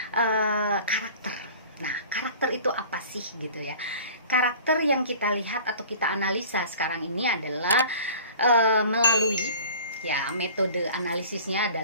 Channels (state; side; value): inverted; both; correlation -0.43